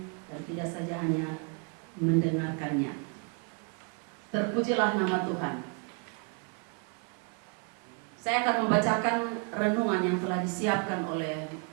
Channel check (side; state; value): left; quieter; 35.9 dB